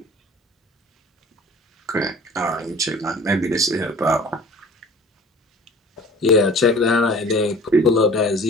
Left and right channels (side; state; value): both; normal; correlation 0.46